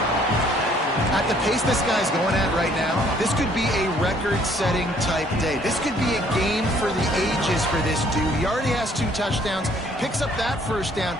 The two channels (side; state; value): both; normal; correlation 0.62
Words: At the pace this guy's going at right now, this could be a record-setting type day. This could be a game for the ages for this dude. He already has 2 touchdowns, picks up that first down.